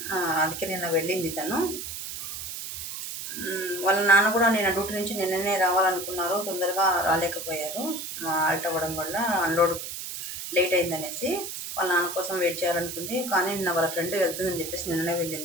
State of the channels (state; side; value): noise; right; hiss, 7 dB below the sound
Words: అందుకే నిన్న వెళ్ళింది తను. వాళ్ళ నాన్న కూడా నేను డ్యూటీ నుంచి నిన్ననే రావాలనుకున్నారు, తొందరగా రాలేకపోయారు. ఆల్ట్ అవ్వడం వల్ల అన్లోడ్ లేట్ అయిందనేసి వాళ్ళ నాన్న కోసం వెయిట్ చేయాలనుకుంది. కానీ నిన్న వాళ్ళ ఫ్రెండ్ వెళ్తుందని చెప్పేసి నిన్ననే